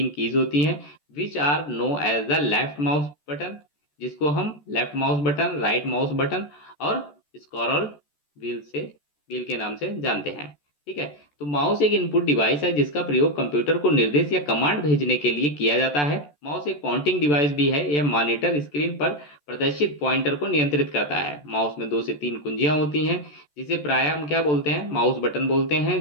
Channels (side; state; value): right; late; 14 ms